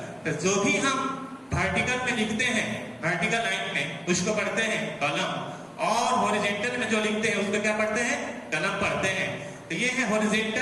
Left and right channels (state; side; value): identical; both; correlation 1.00